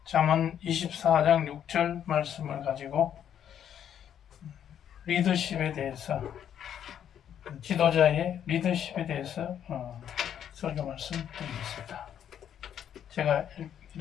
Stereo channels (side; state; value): right; quieter; 9.5 dB